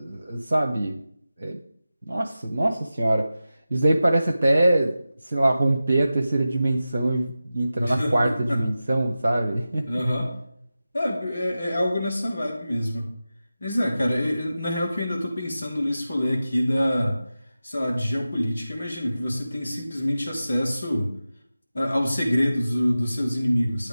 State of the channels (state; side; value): inverted; both; correlation -0.94